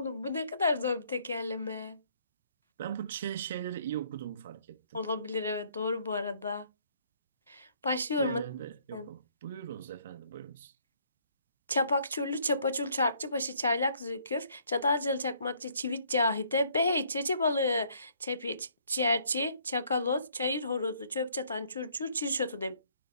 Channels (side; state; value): both; inverted; correlation -0.64